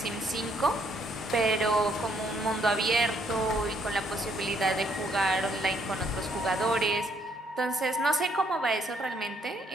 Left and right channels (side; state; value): both; normal; correlation 0.69